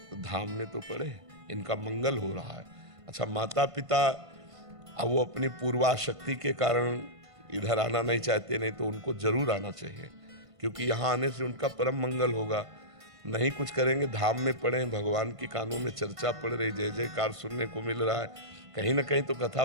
धाम में तो पड़े, इनका मंगल हो रहा है। अच्छा, माता पिता अब वो अपनी पूर्वाशक्ति के कारण इधर आना नहीं चाहते, नहीं तो उनको जरूर आना चाहिए, क्योंकि यहाँ आने से उनका परम मंगल होगा। नहीं कुछ करेंगे, धाम में पड़े, भगवान के कानों में चर्चा पड़ रही, जय जयकार सुनने को मिल रहा है, कहीं ना कहीं तो कथा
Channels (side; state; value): left; late; 1.5 ms